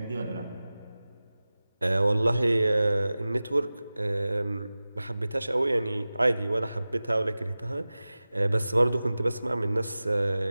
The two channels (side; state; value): both; inverted; correlation -0.97